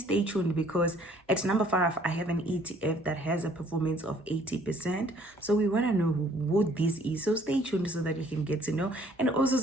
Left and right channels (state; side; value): normal; both; correlation 0.60